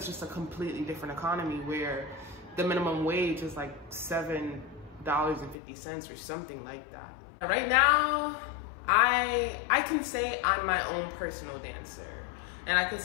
just a completely different economy where the minimum wage is like $7.50 or something like that. Right now, I can say I'm my own personal dancer. And I can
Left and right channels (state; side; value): drops out; right; at 5.6 s